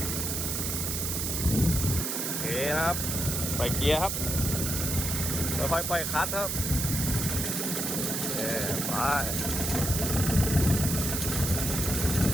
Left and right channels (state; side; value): noise; right; hiss, 1 dB below the sound